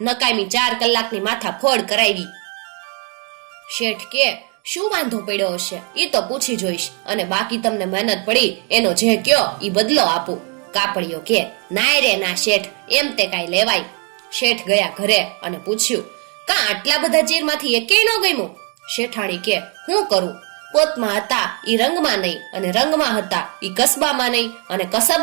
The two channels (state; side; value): quieter; left; 36.8 dB